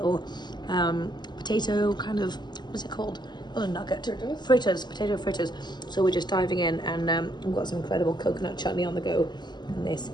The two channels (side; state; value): right; late; 0.21 ms